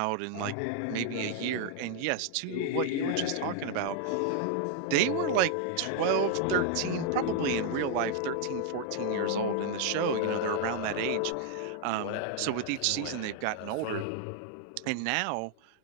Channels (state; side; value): different; both; correlation 0.00